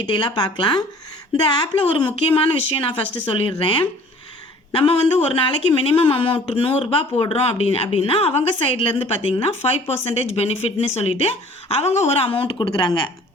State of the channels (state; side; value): normal; both; correlation 0.51